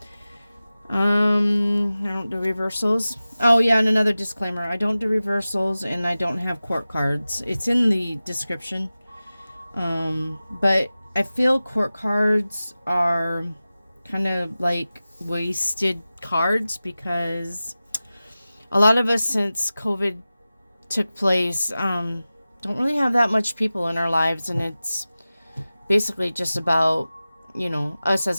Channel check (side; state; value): both; inverted; correlation -0.96